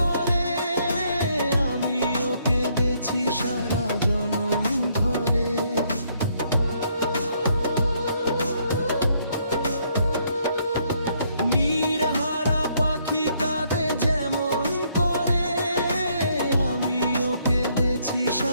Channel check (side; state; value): both; inverted; correlation -0.70